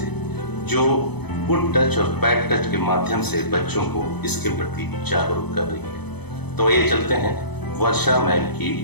जो गुड टच और बैड टच के माध्यम से बच्चों को इसके प्रति जागरूक कर रही है। तो ये चलते हैं वर्षा मैम की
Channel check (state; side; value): late; right; 0.98 ms